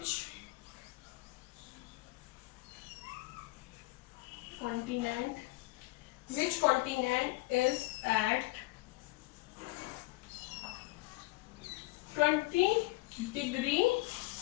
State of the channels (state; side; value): quieter; right; 21.6 dB